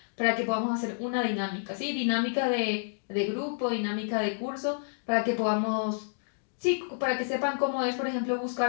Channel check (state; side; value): silent; right; digital silence